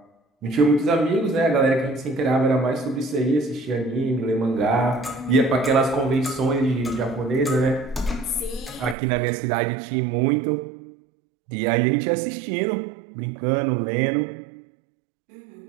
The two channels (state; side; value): drops out; left; at 9.0 s